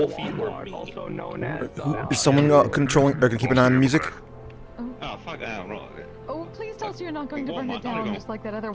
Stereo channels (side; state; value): both; identical; correlation 1.00